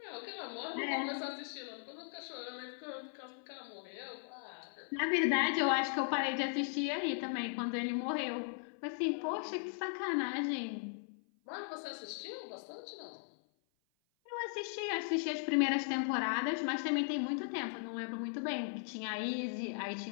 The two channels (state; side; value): silent; right; 52 dB below the other